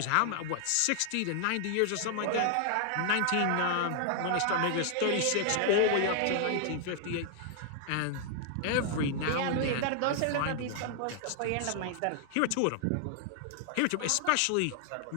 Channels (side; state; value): both; different; correlation 0.00